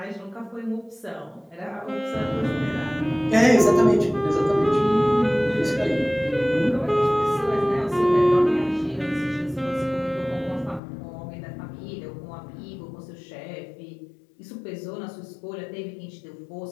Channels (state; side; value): drops out; right; at 10.8 s